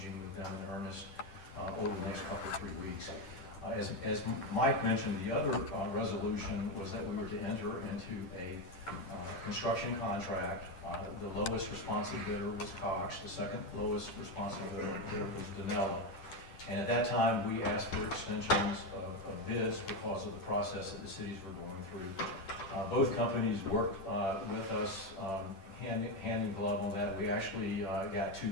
with them in earnest over the next couple of 3 weeks. As Mike mentioned, the other resolution was that we were to enter into a construction contract. The lowest responsive bidder was Cox. The second lowest responsive bidder was Danella. And at that time, we asked for extensions of bids because of the process that the cities were going through. Both companies worked with us hand in glove on that. We actually got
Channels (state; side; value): late; right; 10 ms